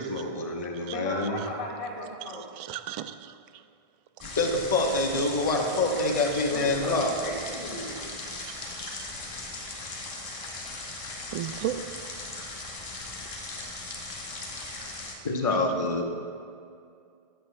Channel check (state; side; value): late; left; 1.6 ms